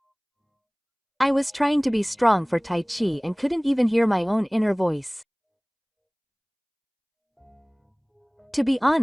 I was trying to be strong for Taichi and couldn't even hear my own inner voice. To be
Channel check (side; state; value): both; identical; correlation 1.00